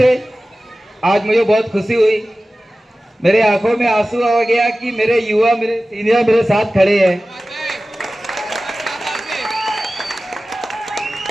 आज मुझे बहुत खुशी हुई, मेरे आंखों में आंसू आ गया कि मेरे युवा, मेरे सीनियर मेरे साथ खड़े हैं।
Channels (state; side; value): normal; both; correlation 0.96